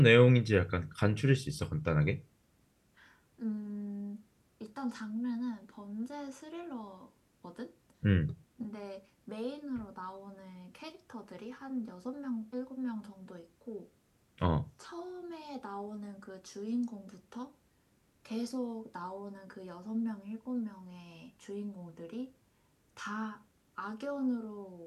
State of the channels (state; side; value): identical; both; correlation 1.00